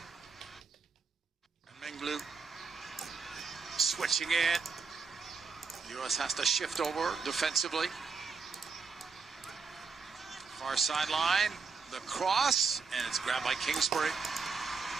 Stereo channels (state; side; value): quieter; left; 5.0 dB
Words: switching it. U.S. has to shift over defensively. Far sideline, the cross, and it's grabbed by Kingsbury.